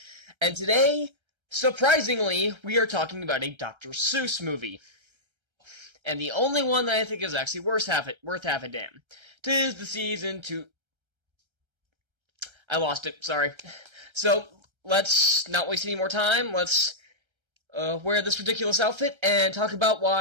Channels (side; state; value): left; late; 1.3 ms